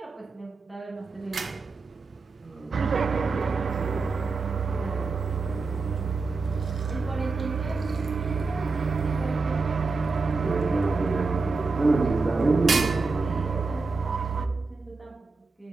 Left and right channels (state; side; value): quieter; left; 4.1 dB